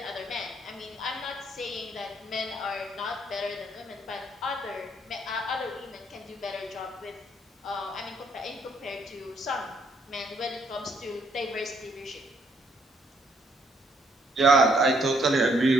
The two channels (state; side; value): normal; both; correlation 0.70